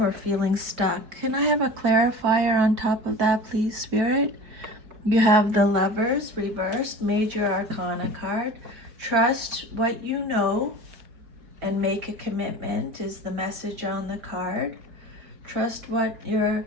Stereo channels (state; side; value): late; left; 4.6 ms